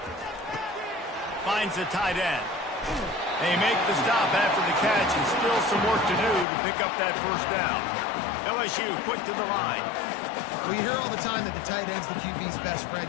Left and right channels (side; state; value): right; drops out; at 6.5 s